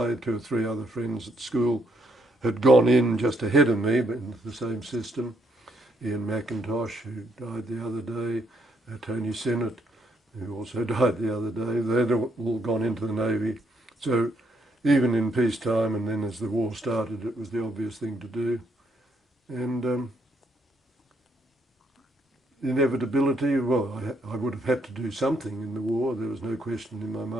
2 or 3 other friends at school had gone in just ahead of me, but into the same system. Ian McIntosh, who died the other day, Tony Sinnott, who also died the other day. They'd all gone into the Navy. So even in peacetime, and then as the war started, it was the obvious thing to do. And inevitability. Well, I would have had to do something in the war. There was no question in my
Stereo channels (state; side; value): normal; both; correlation 0.73